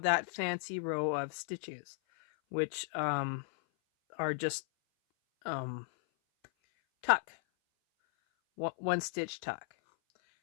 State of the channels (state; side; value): silent; right; 54 dB below the other